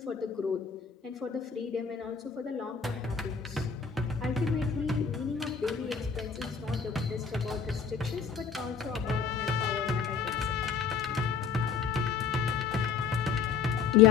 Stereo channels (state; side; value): quieter; right; 6.2 dB